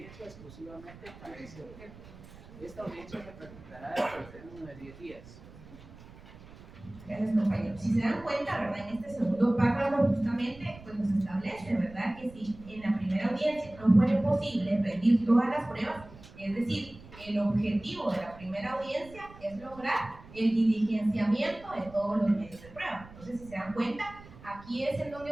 exclusivamente para ese objeto. Esta audiencia se practicará dentro del término de 10 días. Gracias, compañero. Si se dan cuenta, ¿verdad?, en este segundo párrafo justamente pues nos establece, ¿verdad?, que si en la primera audiencia no fuera posible rendir todas las pruebas, es decir, el objetivo de la primera audiencia es lograr el diligenciamiento de todos los medios de prueba. Entonces, si se dan cuenta, aquí es en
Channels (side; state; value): right; noise; rumble, 19 dB below the sound